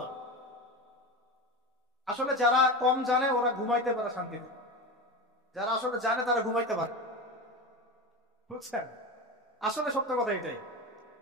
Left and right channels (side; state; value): both; normal; correlation 0.24